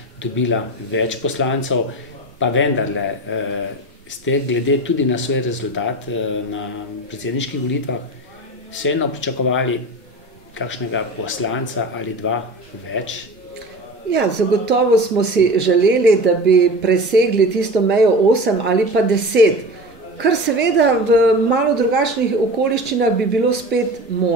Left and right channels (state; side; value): normal; both; correlation 0.31